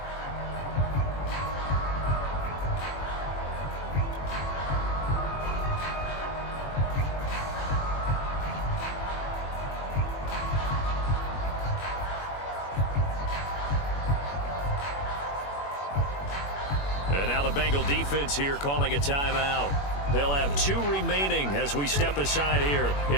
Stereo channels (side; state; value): right; late; 21 ms